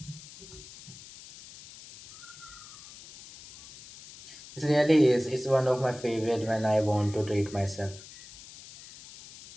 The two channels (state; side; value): noise; left; hiss, 18 dB below the sound